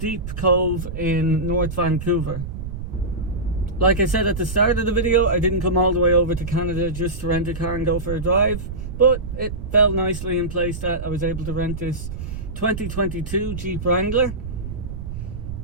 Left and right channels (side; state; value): right; noise; rumble, 8 dB below the sound